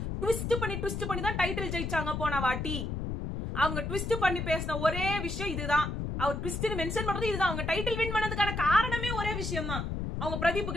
ட்விஸ்ட் பண்ணி தான் டைட்டில் ஜெயிச்சாங்க போன வாட்டி. அவங்க ட்விஸ்ட் பண்ணி பேசின ஒரே விஷயம் இதுதான். அவர் ட்விஸ்ட் மென்ஷன் பண்றது இதுதான். அவங்க டைட்டில் வின் பண்ணதுக்கான காரணமே ஒரே விஷயம் தான், அவங்க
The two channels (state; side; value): noise; left; rumble, 3 dB below the sound